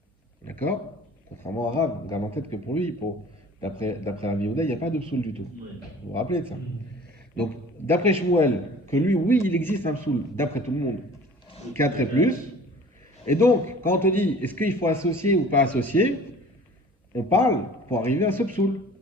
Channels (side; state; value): both; normal; correlation 0.46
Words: D'accord? Contrairement à Rav, on garde en tête que pour lui, d'après Rabbi Yehuda, il n'y a pas de psoul du tout. Vous vous rappelez de ça? Donc, d'après Shmuel, que lui, oui, il existe un psoul, d'après tout le monde, 4 et plus. Et donc, quand on te dit, est-ce qu'il faut associer ou pas associer, on parle pour arriver à ce psoul,